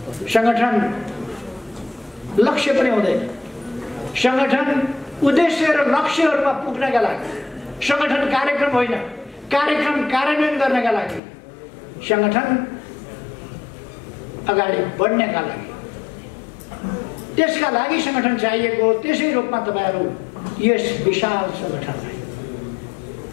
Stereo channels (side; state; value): right; drops out; at 11.2 s